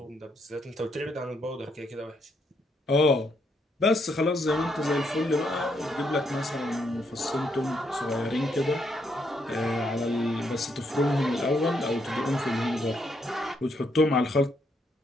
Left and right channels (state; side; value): normal; both; correlation 0.75